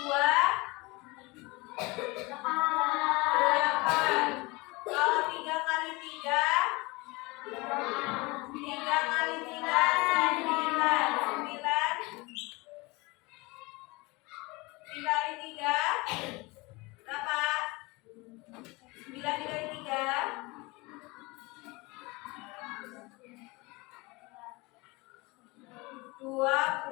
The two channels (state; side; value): quieter; right; 24.5 dB